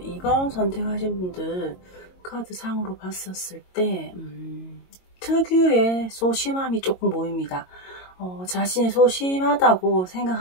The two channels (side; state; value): right; late; 22 ms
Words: 2번 선택하신 분들 카드 상으로 봤었을 때 특유의 소심함이 조금 보입니다. 자신이 소심하다고